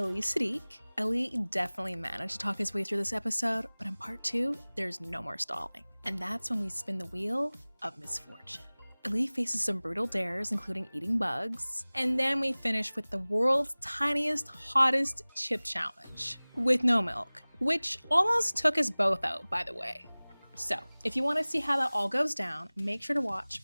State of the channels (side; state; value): both; inverted; correlation -1.00